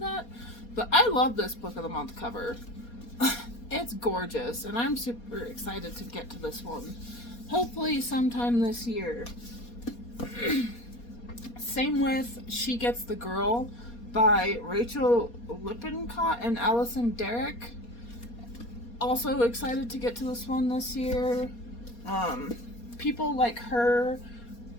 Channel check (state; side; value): late; right; 4.2 ms